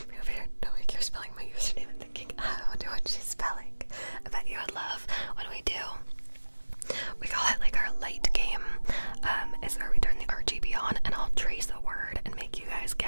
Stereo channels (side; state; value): both; inverted; correlation -1.00